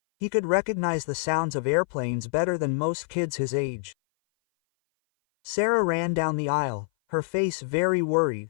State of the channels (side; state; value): right; silent; 57 dB below the other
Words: He could recognize the sounds of airplanes better than most kids his age. Sarah ran down the aisle, her face very